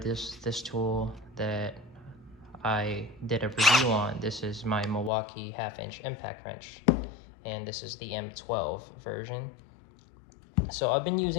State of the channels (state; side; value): drops out; right; at 5.1 s